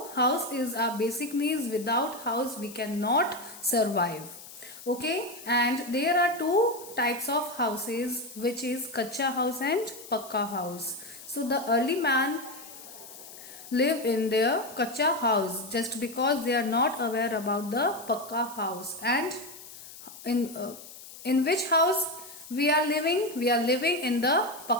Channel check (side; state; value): left; noise; hiss, 16 dB below the sound